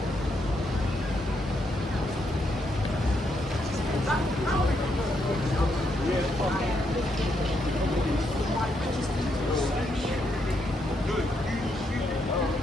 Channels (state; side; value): normal; both; correlation 0.78